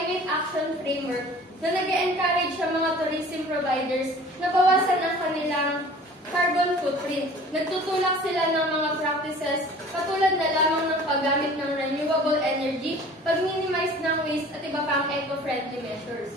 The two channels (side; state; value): both; normal; correlation 0.46